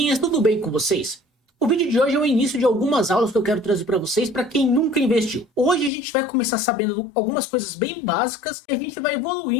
tudo bem com vocês? O vídeo de hoje é o início de algumas aulas que eu quero trazer para vocês para quem nunca investiu. Hoje a gente vai começar sabendo algumas coisas bem básicas e a gente vai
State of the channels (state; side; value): drops out; right; at 5.9 s